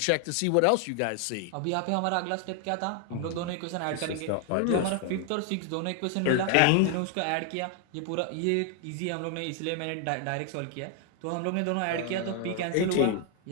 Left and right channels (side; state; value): both; different; correlation 0.00